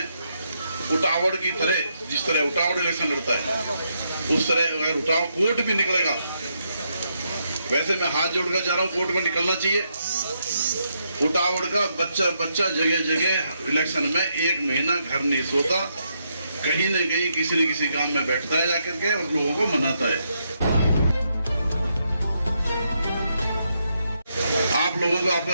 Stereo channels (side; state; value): both; inverted; correlation -0.79